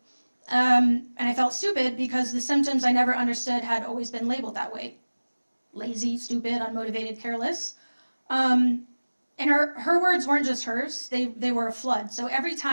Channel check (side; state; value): both; inverted; correlation -1.00